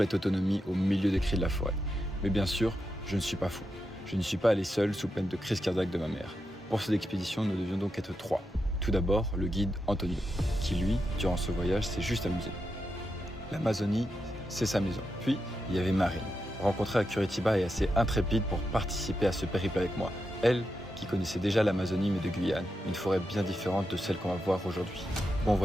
autonomie au milieu des cris de la forêt. Mais bien sûr, je ne suis pas fou. Je ne suis pas allé seul sous peine de crise cardiaque de ma mère. Pour cette expédition, nous devions donc être 3. Tout d'abord, le guide Antonio, qui lui, durant ce voyage, s'est juste amusé. L'Amazonie, c'est sa maison. Puis, il y avait Marine, rencontrée à Curitiba et assez intrépide pour participer à ce périple avec moi. Elle, qui connaissait déjà l'Amazonie mais de Guyane, une forêt bien différente de celle qu'on va voir aujourd'hui. Bon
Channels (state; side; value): normal; both; correlation 0.86